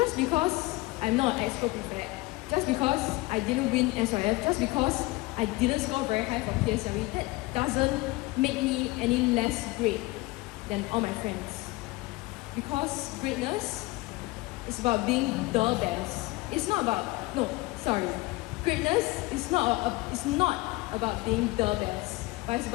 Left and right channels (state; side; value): quieter; right; 21.1 dB